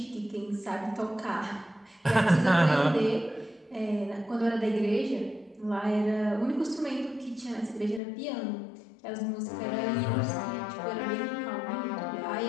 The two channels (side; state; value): right; drops out; at 8.0 s